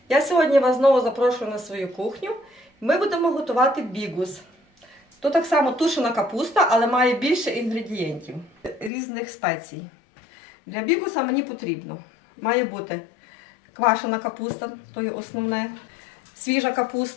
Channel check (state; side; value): drops out; right; at 8.9 s